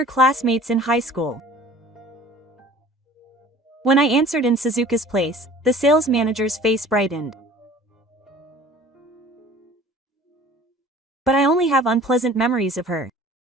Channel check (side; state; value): both; normal; correlation 0.48